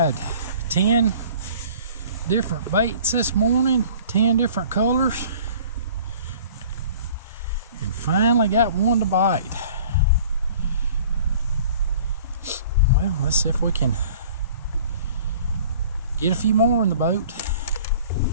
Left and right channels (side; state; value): both; inverted; correlation -0.49